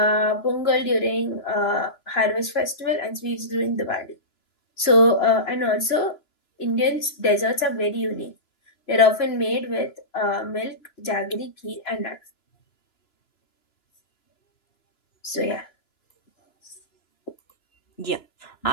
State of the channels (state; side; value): late; right; 3.0 ms